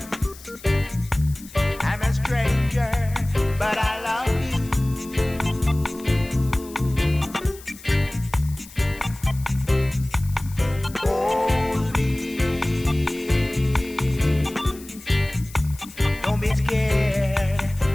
I'm a stranger, but I love you. Hold me. Don't be scared.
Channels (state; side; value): noise; left; hiss, 19 dB below the sound